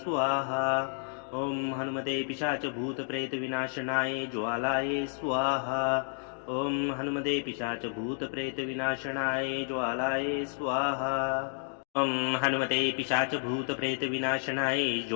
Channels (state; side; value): silent; right; 57 dB below the other